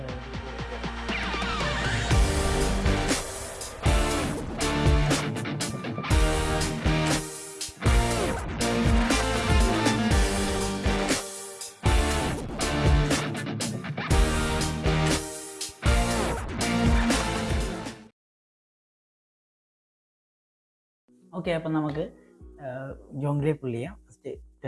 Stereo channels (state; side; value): identical; both; correlation 1.00